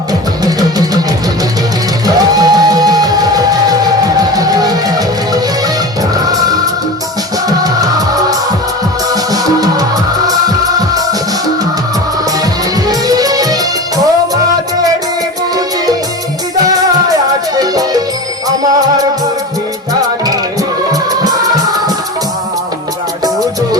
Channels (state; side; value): normal; both; correlation 0.30